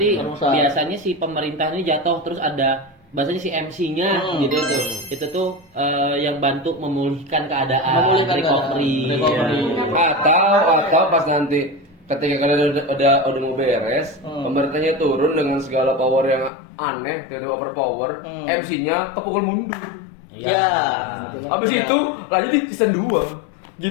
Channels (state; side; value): drops out; right; at 16.5 s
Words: Perang besar. biasanya si pemerintah ini jatuh terus ada bahasanya si MC-nya gitu tuh. Itu tuh yang bantu memulihkan keadaan, Memulihkan recovery. keadaan. Recovery. Atau pas nanti ketika kalian udah mau beres, pemerintahnya turun dengan segala power yang aneh, tiba-tiba overpower, MC-nya kepukul mundur. Iya. Habis itu lanjut di season 2.